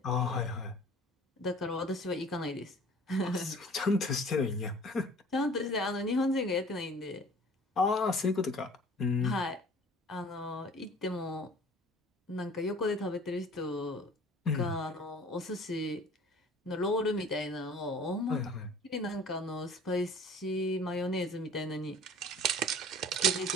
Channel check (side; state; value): both; normal; correlation 0.47